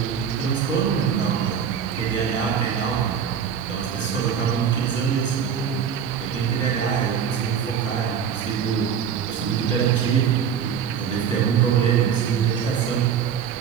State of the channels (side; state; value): left; quieter; 7.7 dB